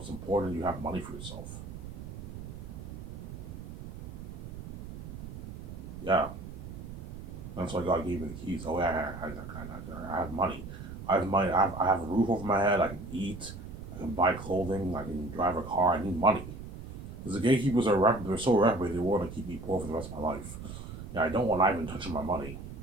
It's important you have money for yourself. Yeah. That's why God gave me the keys. Oh, yeah, I have money. I have money. I have a roof over my head. I can eat. I can buy clothing. I can drive a car. I need money. Because the gatekeepers they're so reprobate, they want to keep me poor for the rest of my life. Yeah, I don't want Ivan touching my money.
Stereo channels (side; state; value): right; noise; rumble, 10 dB below the sound